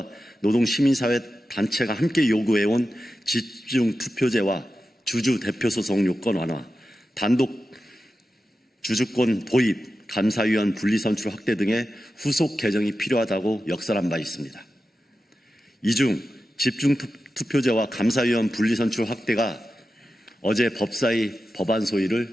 노동시민사회 단체가 함께 요구해온 집중투표제와 주주대표소송 요건 완화, 단독 주주권 도입, 감사위원 분리선출 확대 등의 후속 개정이 필요하다고 역설한 바 있습니다. 이 중 집중투표제와 감사위원 분리선출 확대가 어제 법사위 법안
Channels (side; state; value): both; normal; correlation 0.92